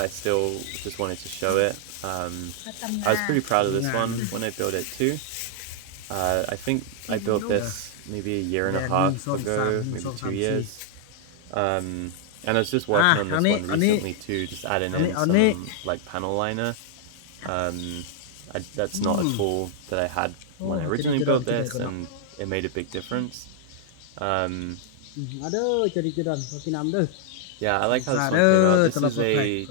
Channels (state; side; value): different; both; correlation 0.00